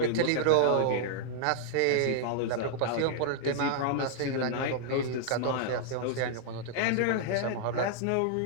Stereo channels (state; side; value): different; both; correlation -0.01